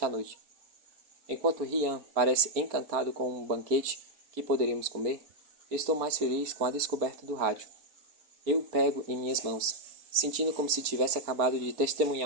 a noite. Enquanto Rian parece encantado com um banquete que poderíamos comer, estou mais feliz com a descoberta do rádio. Eu o pego em minhas mãos, sentindo como se tivesse acabado de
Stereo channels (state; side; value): late; left; 4.4 ms